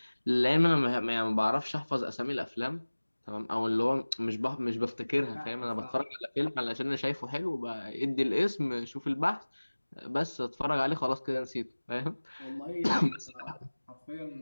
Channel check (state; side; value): inverted; both; correlation -1.00